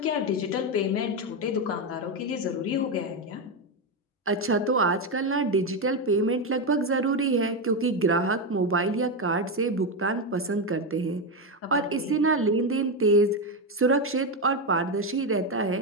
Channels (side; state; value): both; normal; correlation 0.09